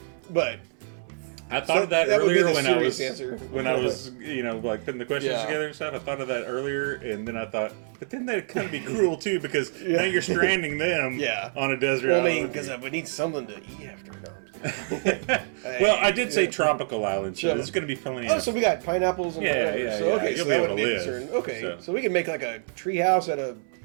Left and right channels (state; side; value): silent; left; 61 dB below the other